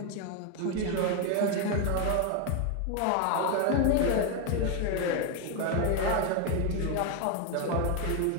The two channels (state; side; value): different; both; correlation 0.01